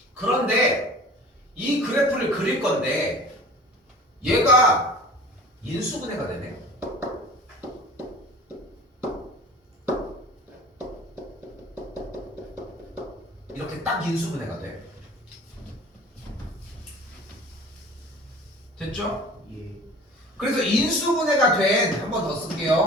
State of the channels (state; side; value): normal; both; correlation 0.43